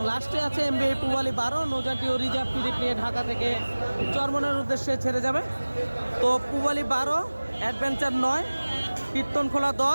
লাস্টে আছে এমবি পুবালি 12 নৌযানটিও রিজার্ভ ট্রিপ নিয়ে ঢাকা থেকে চরমনের উদ্দেশ্যে ছেড়ে যাবে। তো পুবালি 12, অ্যাডভেঞ্চার 9, কীর্তনখোলা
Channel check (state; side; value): inverted; both; correlation -1.00